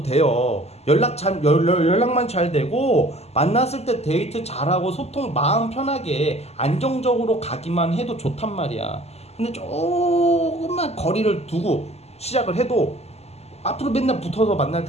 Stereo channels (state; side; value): late; right; 0.30 ms